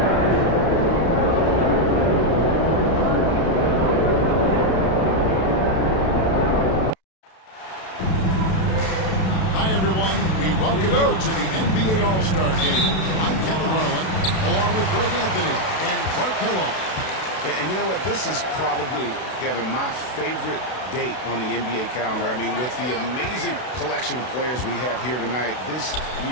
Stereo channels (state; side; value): late; right; 32 ms